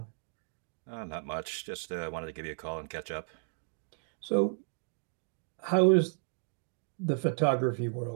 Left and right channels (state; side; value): silent; left; 55 dB below the other